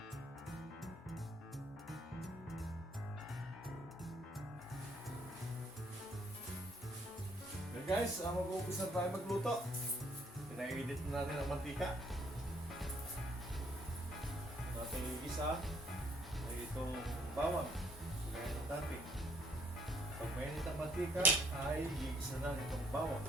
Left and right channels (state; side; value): normal; both; correlation 0.66